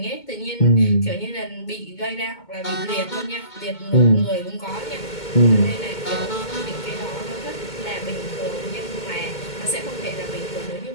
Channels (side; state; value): right; late; 2.2 ms